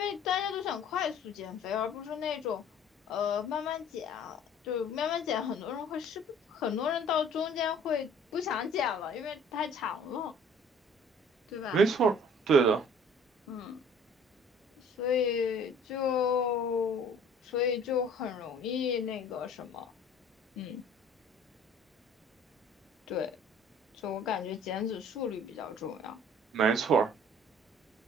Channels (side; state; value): both; normal; correlation 0.52